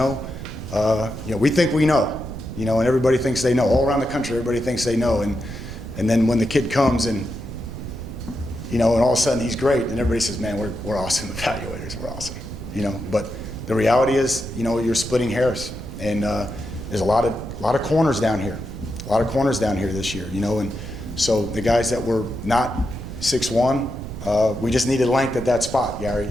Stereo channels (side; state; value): right; noise; rumble, 9 dB below the sound